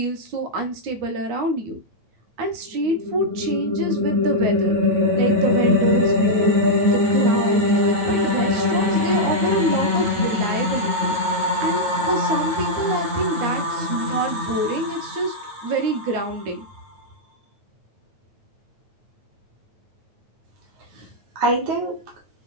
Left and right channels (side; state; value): left; late; 9.2 ms